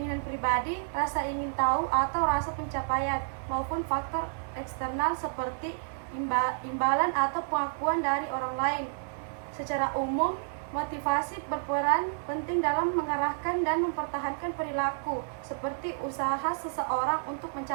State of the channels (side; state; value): left; silent; digital silence